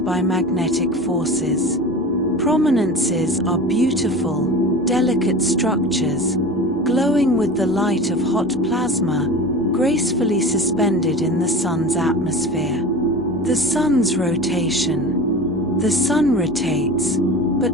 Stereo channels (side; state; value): both; normal; correlation 0.33